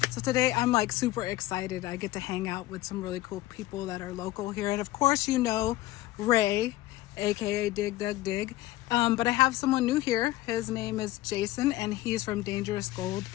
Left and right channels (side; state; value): right; quieter; 16.8 dB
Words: So today I'm like super excited. I get to hang out with some really cool people that are local here. And of course, you know, Ray, aka Dig Dug Dig. But I have someone new here. His name is Jason and he's from Dangerous Gold.